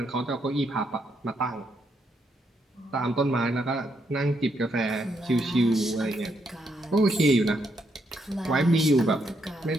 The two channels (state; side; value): normal; both; correlation 0.77